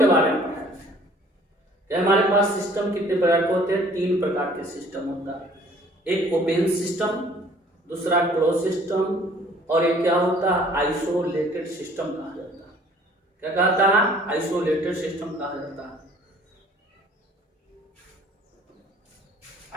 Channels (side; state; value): both; normal; correlation 0.55